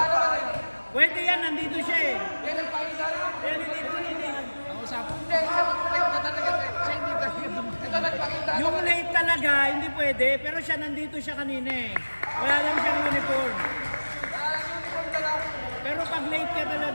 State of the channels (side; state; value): both; inverted; correlation -1.00